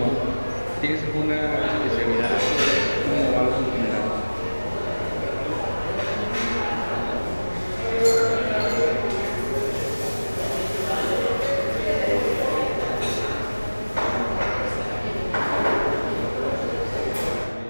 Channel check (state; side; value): inverted; both; correlation -1.00